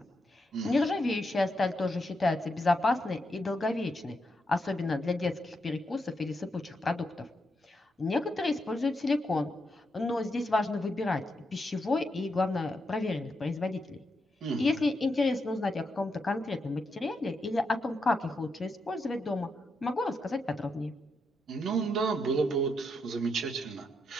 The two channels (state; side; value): normal; both; correlation 0.83